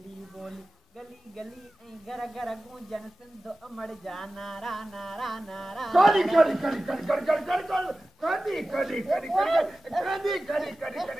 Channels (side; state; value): both; normal; correlation 0.96